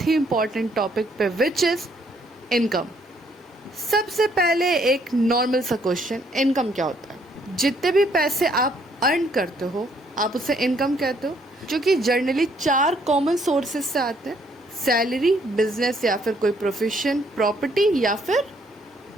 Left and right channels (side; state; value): both; normal; correlation 0.67